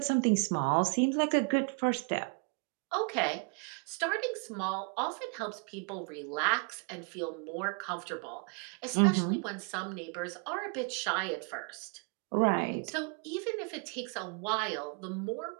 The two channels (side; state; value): left; quieter; 36.7 dB